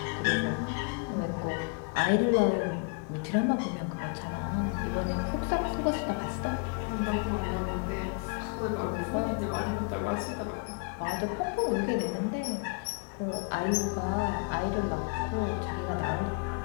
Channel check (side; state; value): right; quieter; 35.4 dB